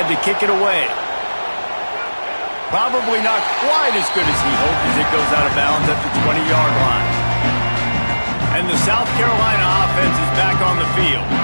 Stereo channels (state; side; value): inverted; both; correlation -1.00